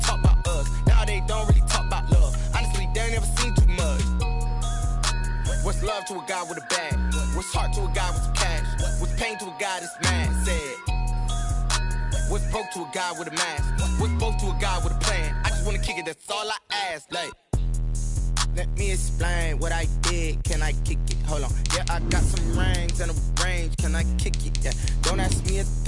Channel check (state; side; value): identical; both; correlation 1.00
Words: about us. Now they don't really talk about love. Honestly, they ain't never seen too much. What's love to a guy with a bag? What's heart to a guy with some cash? What's pain to a guy that's mad? Said. What's broke to a guy with a mask? What's both to a guy with a plan? I just wanna kick it, that's all I ask. Like, let me explain what I did. Can I kick it? Hold on. Yeah, I got some rings and a range. Can I kick it? Yeah. Don't ask me a